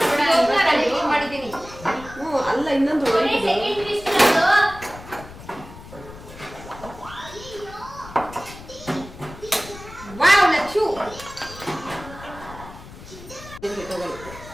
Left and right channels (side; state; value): left; noise; rumble, 16 dB below the sound